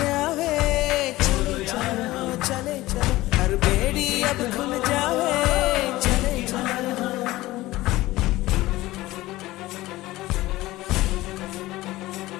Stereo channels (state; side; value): quieter; right; 17.9 dB